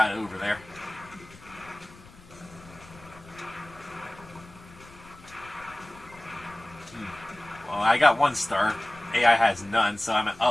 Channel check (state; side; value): noise; left; rumble, 22 dB below the sound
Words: it over there. Well, I got 1 star. AI has none, so I'm